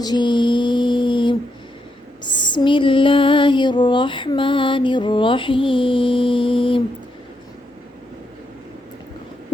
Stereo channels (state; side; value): normal; both; correlation 0.81